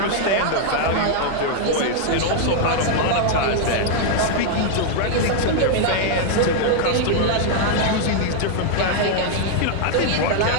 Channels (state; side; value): different; both; correlation 0.00